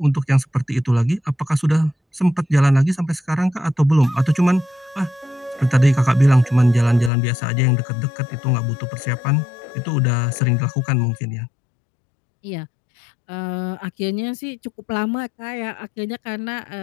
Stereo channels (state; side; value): drops out; right; at 7.1 s